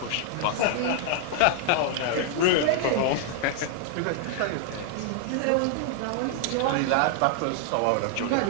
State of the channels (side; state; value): both; different; correlation 0.00